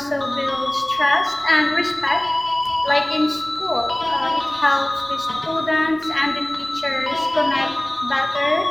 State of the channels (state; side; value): noise; left; rumble, 30 dB below the sound